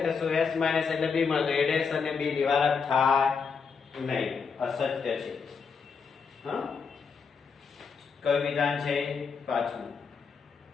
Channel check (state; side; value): quieter; right; 5.6 dB